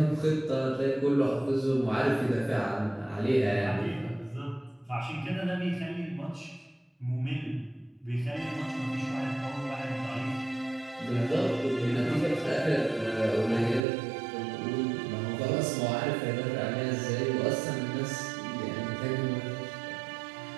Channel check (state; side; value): drops out; left; at 13.8 s